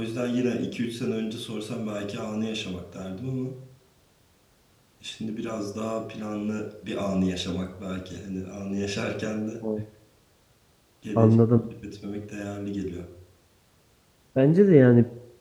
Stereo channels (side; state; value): both; identical; correlation 1.00